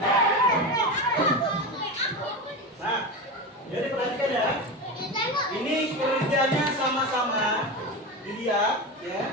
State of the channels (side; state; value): both; normal; correlation 0.21